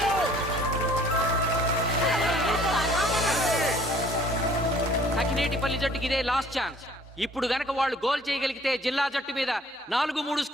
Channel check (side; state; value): both; normal; correlation 0.55